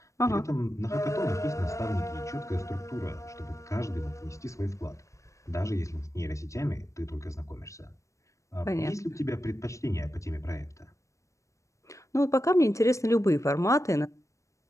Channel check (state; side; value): late; right; 0.15 ms